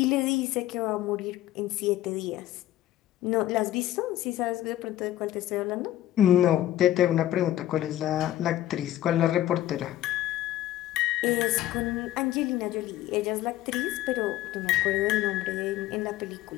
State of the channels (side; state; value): right; quieter; 13.8 dB